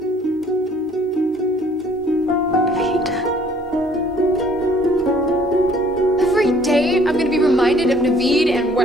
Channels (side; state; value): both; normal; correlation 0.58